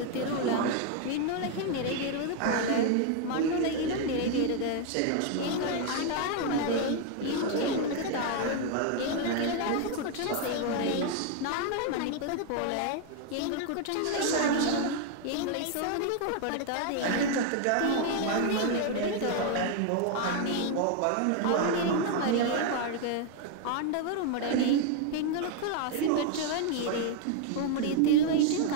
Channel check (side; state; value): both; different; correlation 0.00